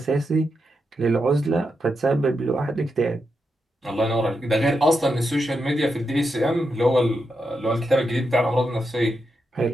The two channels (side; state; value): both; normal; correlation 0.85